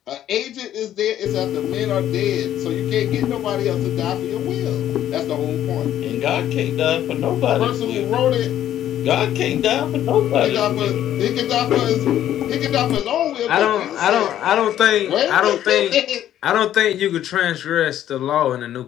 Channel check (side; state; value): right; quieter; 11.6 dB